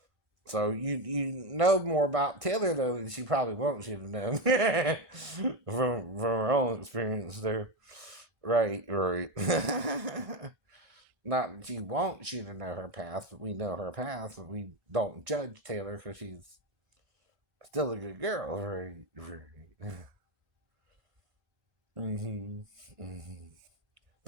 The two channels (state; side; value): late; left; 1.6 ms